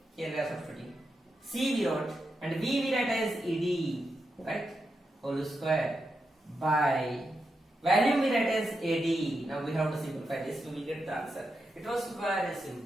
Here we are substituting. C we wrote and V we write as Ed, right? Whole square by value we write as AD. Now we have to simplify this. We will get the answer. It was very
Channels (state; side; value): normal; both; correlation 0.86